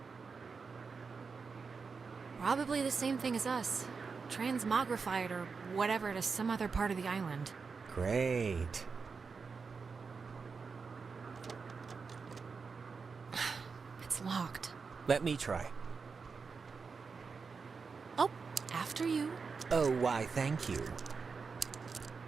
Probably the same thing as us. Transmogrified or whatever to some other part of the island. Great. It's locked. Let me try. Oh, after you. Oh, why, thank you.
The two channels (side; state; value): left; quieter; 5.1 dB